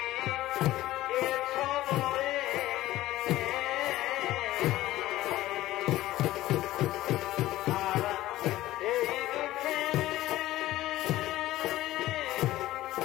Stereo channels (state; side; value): quieter; right; 15.8 dB